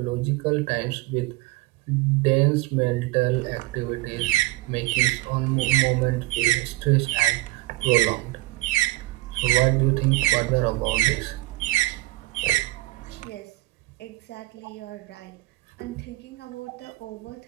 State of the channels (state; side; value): quieter; left; 19.9 dB